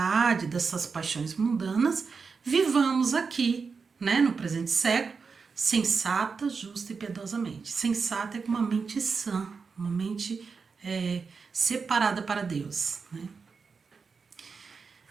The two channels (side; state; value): left; quieter; 5.1 dB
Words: dessas paixões mundanas, vivamos aqui, né, no presente século, sensata, justa e piedosamente. Sensata é com uma mente sã, uma mente separada para Deus, né?